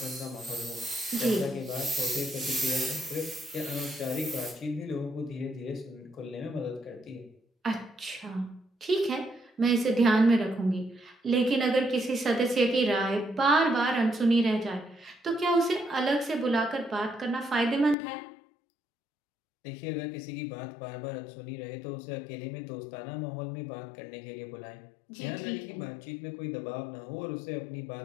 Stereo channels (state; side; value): drops out; right; at 17.9 s